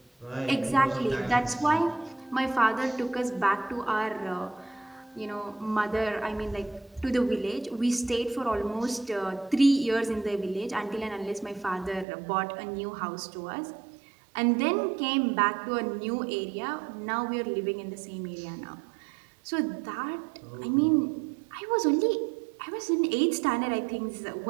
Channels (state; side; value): drops out; left; at 12.1 s